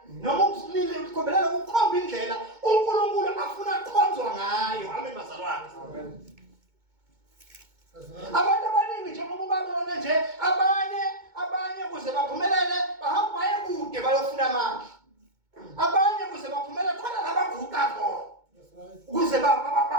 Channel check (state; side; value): late; left; 2.2 ms